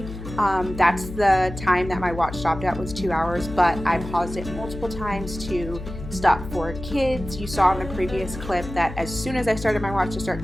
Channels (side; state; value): left; noise; hum, 10 dB below the sound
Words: That's the time that my watch stopped at, was 2 hours, but I paused it multiple times to stop for kids. You saw in the previous clip that as soon as I started my watch to start